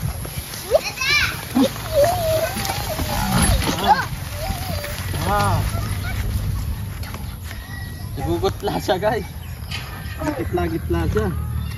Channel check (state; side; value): identical; both; correlation 1.00